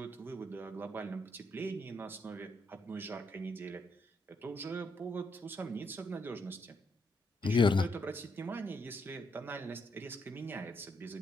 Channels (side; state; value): both; normal; correlation 0.77